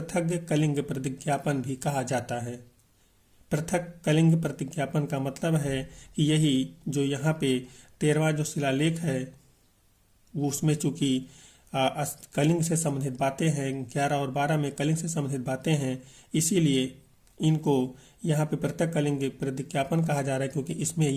कलिंग प्रतिज्ञापन भी कहा जाता है। पृथक कलिंग प्रतिज्ञापन का मतलब है कि यही जो यहाँ पे 13वां जो शिलालेख है वो उसमें चूंकि कलिंग से संबंधित बातें हैं, 11 और 12 में कलिंग से संबंधित बातें हैं, इसीलिए इनको यहाँ पे पृथक कलिंग प्रतिज्ञापन कहा जा रहा है क्योंकि इसमें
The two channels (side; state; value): both; identical; correlation 1.00